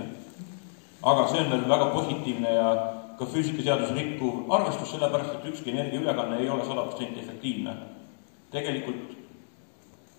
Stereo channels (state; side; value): silent; right; digital silence